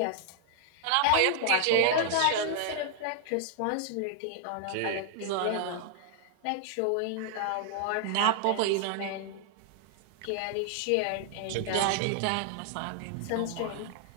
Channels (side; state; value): both; different; correlation 0.00